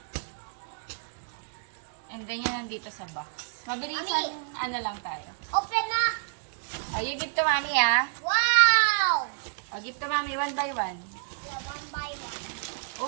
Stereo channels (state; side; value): silent; left; digital silence